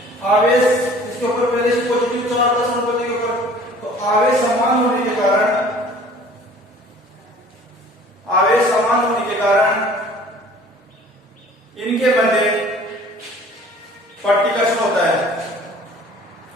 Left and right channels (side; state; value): both; normal; correlation 0.50